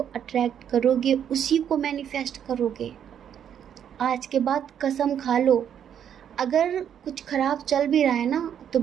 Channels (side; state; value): left; quieter; 9.0 dB